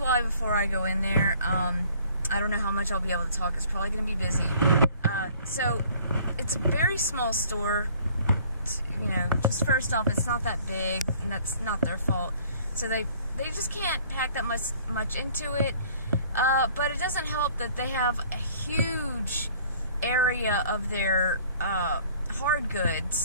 why before I go in there. I don't know how much I'll be able to talk. It's probably going to be busy. So it's a very small store. You know, just first off, it's not that big, and that's not their fault. So they just can't pack that much into it. But it doesn't help that they have a huge area of their hard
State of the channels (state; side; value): inverted; both; correlation -0.55